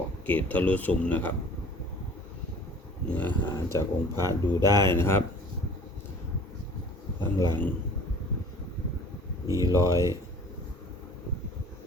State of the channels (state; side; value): normal; both; correlation 0.48